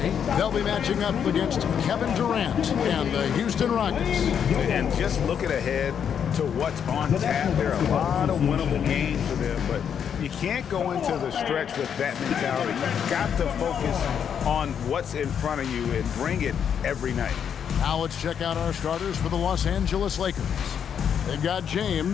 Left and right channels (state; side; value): quieter; right; 8.0 dB